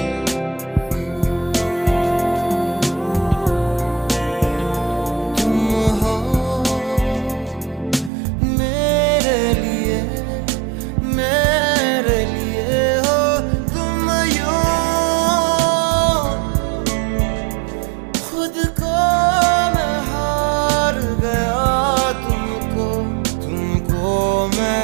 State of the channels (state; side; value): drops out; left; at 8.1 s